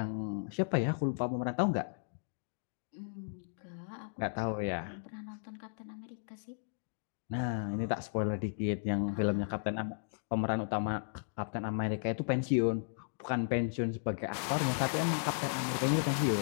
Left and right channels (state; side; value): silent; right; digital silence